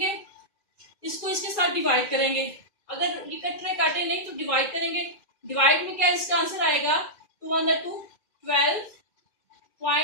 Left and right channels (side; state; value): right; late; 2.4 ms